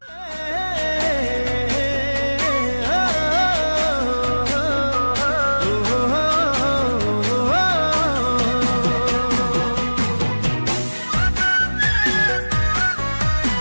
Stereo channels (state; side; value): inverted; both; correlation -1.00